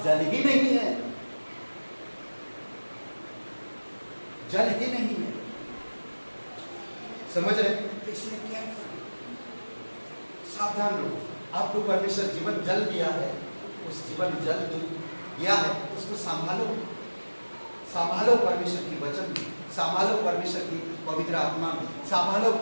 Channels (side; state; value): both; inverted; correlation -1.00